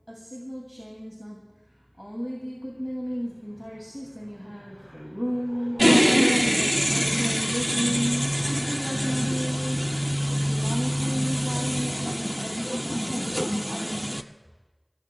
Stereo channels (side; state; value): both; identical; correlation 1.00